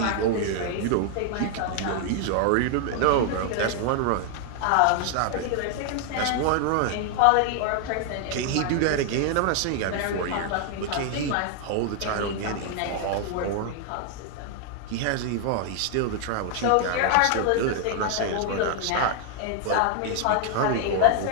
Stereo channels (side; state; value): both; different; correlation 0.00